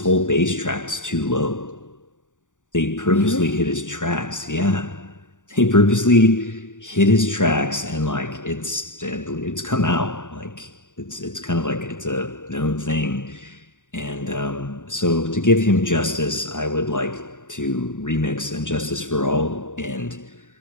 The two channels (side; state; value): right; late; 0.86 ms